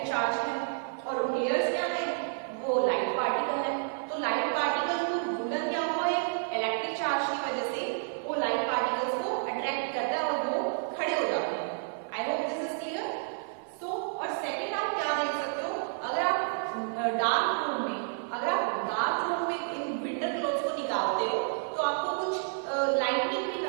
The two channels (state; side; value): silent; left; 58 dB below the other